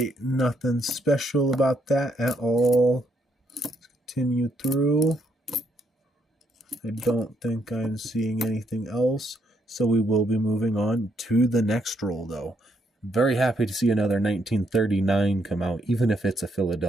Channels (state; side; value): normal; both; correlation 0.74